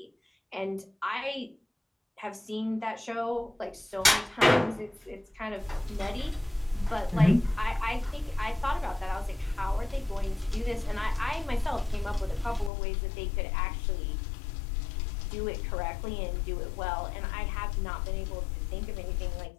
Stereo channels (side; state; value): right; drops out; at 12.7 s